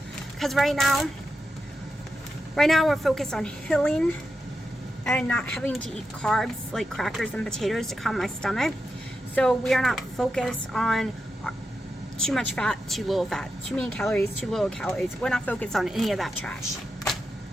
Because right now we're focused on healing and not having to eat carbs like crackers and potatoes to calm my stomach. So we are not focused on too much fat, too little fat, too many calories, too little calories. We're not focused on any of that trash.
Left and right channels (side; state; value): both; normal; correlation 0.88